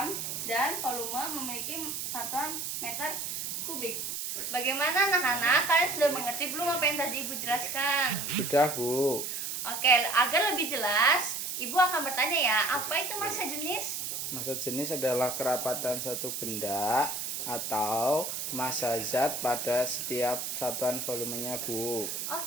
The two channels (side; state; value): right; noise; hiss, 4 dB below the sound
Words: dan volume memiliki satuan meter kubik. Bagaimana anak-anak? Kalian sudah mengerti belum apa yang tadi Ibu jelaskan? Sudah, Bu. Oke, agar lebih jelas, Ibu akan bertanya ya, apa itu massa jenis? Massa jenis adalah kerapatan satu benda atau massa zat pada setiap satuan volumenya, Bu.